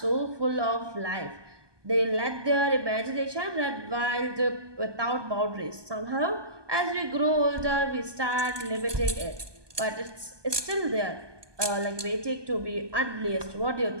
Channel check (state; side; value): late; left; 1.2 ms